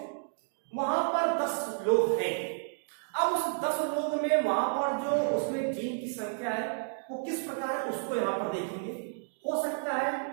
वहां पर 10 लोग हैं। अब उस 10 लोग में वहां पर जो उसमें जीन की संख्या है वो किस प्रकार है उसको यहां पर देखेंगे। हो सकता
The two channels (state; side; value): silent; left; digital silence